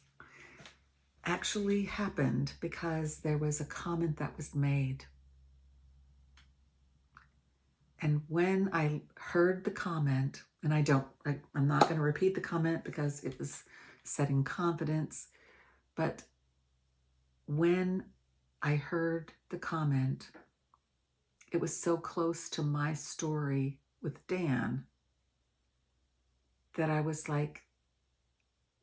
actually happened because there was a comment that was made. And when I heard the comment, and I'm not going to repeat the comment because it was setting confidence, but when I heard the comment, it was so close to my story with Dan that I was like,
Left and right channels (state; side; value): identical; both; correlation 1.00